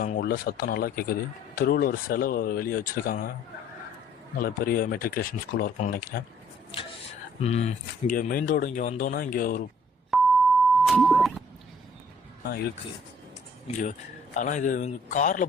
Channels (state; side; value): normal; both; correlation 0.59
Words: உள்ள சத்தம் நல்லா கேட்குது. தெருவில் ஒரு சிலை வெளியே வச்சுருக்காங்க. நல்ல பெரிய மெட்ரிகுலேஷன் ஸ்கூலாக இருக்கும்னு நினைக்கிறேன். இங்கே மெயின் ரோடு இங்கே வந்தோன்னா இங்கே ஒரு இருக்குது இங்கே. ஆனால் இது காரில்